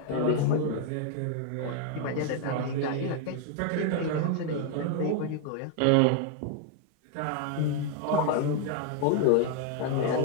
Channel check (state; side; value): different; both; correlation 0.00